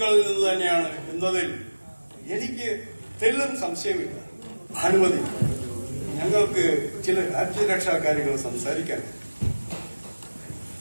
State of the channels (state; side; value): inverted; both; correlation -1.00